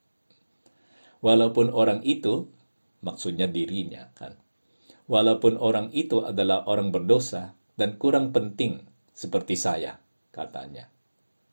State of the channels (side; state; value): both; inverted; correlation -1.00